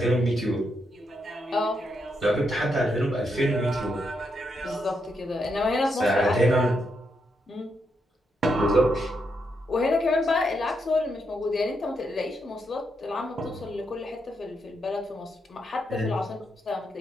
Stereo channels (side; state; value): both; normal; correlation 0.81